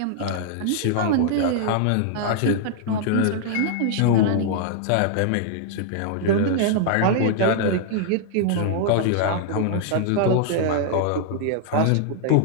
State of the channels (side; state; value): both; different; correlation -0.01